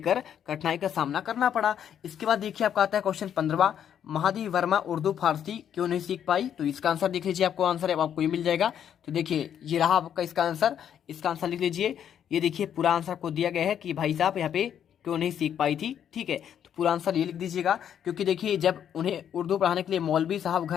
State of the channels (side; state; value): right; quieter; 9.2 dB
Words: कठिनाई का सामना करना पड़ा। इसके बाद देखिए आपका आता है क्वेश्चन 15वां, महादेवी वर्मा उर्दू फारसी क्यों नहीं सीख पाई। तो इसका आंसर देख लीजिए, आपको आंसर है आपको ये मिल जाएगा। तो देखिए ये रहा आपका इसका आंसर। इसका आंसर लिख लीजिए। ये देखिए पूरा आंसर आपको दिया गया है कि भाई साहब यहाँ पे क्यों नहीं सीख पाई थी, ठीक है। तो पूरा आंसर ये लिख दीजिएगा, क्योंकि देखिए जब उन्हें उर्दू पढ़ाने के लिए मौलवी साहब